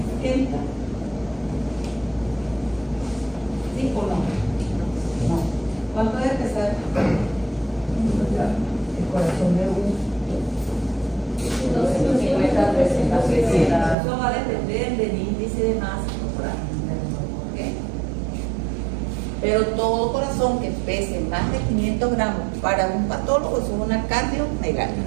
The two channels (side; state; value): left; drops out; at 14.0 s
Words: ¿Sí o no? No. ¿Cuánto debe pesar el corazón de un? Eso va a depender del índice de masa corporal. Pero todo corazón que pese más de 500 gramos para un patólogo es una